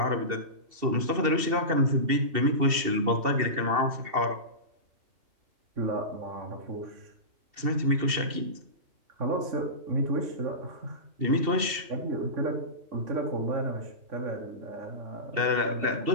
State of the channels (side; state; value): left; late; 2.7 ms